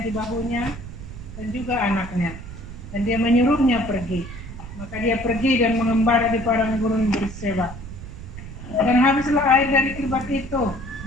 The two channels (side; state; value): right; noise; rumble, 12 dB below the sound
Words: di bahunya, dan juga anaknya. Dan dia menyuruhnya pergi. Maka dia pergi dan mengembara di padang gurun Berseba. Dan habislah air dari kirbat itu,